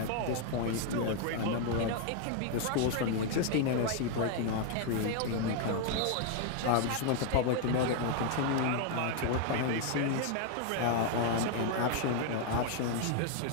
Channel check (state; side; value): different; both; correlation 0.01